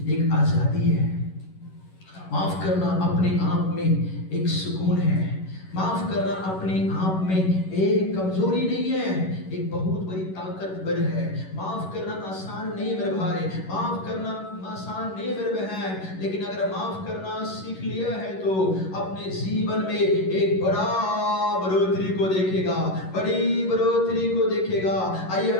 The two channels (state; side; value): late; right; 11 ms